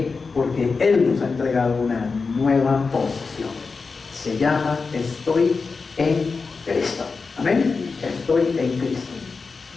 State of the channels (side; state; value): right; quieter; 4.6 dB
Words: Porque Él nos ha entregado una nueva posición. Se llama: estoy en Cristo. Amén. Estoy en Cristo.